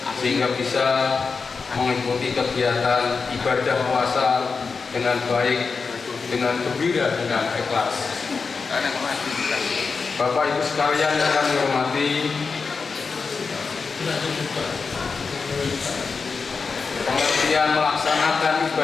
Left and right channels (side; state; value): right; quieter; 4.9 dB